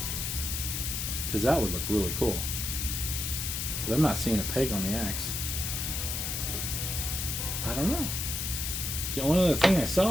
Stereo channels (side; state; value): left; noise; hiss, 2 dB below the sound